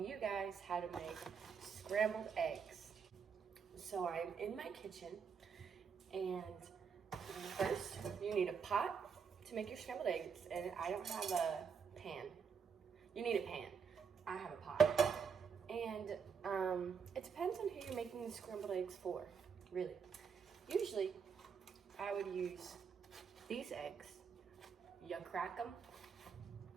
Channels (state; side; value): quieter; left; 6.3 dB